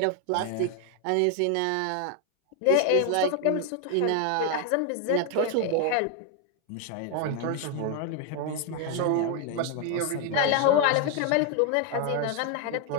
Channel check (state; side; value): different; both; correlation 0.01